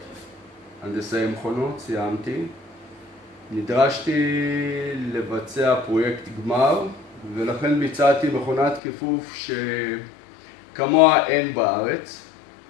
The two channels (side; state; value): right; drops out; at 8.8 s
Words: הנדסאי מכונות, סיימתי. נדרשתי לבצע פרויקט גמר, ולכן ביצעתי מכונת כיפוף שכמוה אין בארץ,